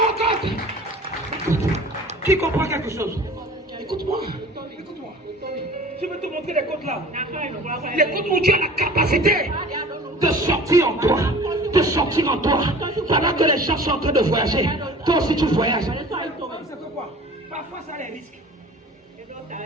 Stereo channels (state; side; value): normal; both; correlation 0.44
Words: God! Qui comprend quelque chose? Écoute-moi. Écoute-moi. Je vais te montrer les côtes là. Les côtes où tu as la capacité de sortir en toi. De sortir en toi. Pendant que les gens sont en train de voyager. Toi aussi tu voyages. C'est quoi? Parfois ça a des risques.